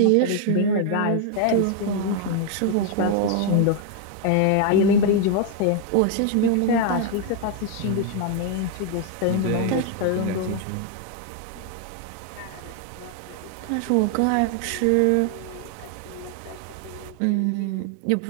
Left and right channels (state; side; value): different; both; correlation 0.00